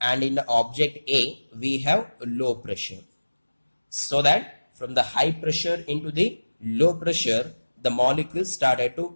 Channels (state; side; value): inverted; both; correlation -1.00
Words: and in the object A we have low pressure. So that from the high pressure into the low pressure the molecule started to